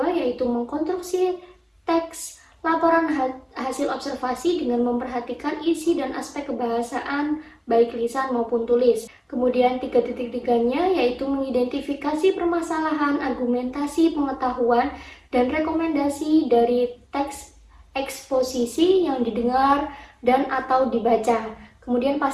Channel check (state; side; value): identical; both; correlation 1.00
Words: yaitu mengkonstruksi teks laporan hasil observasi dengan memperhatikan isi dan aspek kebahasaan baik lisan maupun tulis. Kemudian 3.3-nya yaitu mengidentifikasi permasalahan, argumentasi, pengetahuan, dan rekomendasi dari teks eksposisi yang didengar dan atau dibaca. Kemudian